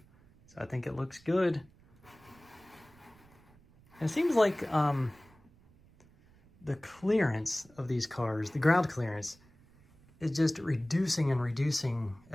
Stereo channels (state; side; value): noise; right; rumble, 28 dB below the sound